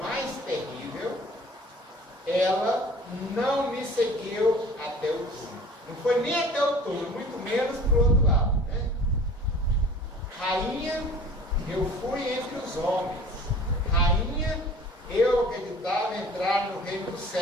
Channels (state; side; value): normal; both; correlation 0.45